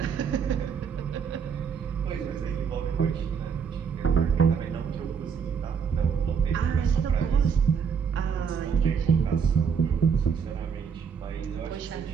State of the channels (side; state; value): left; quieter; 6.7 dB